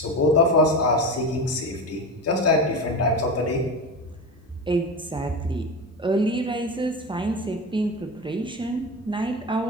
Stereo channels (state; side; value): normal; both; correlation 0.24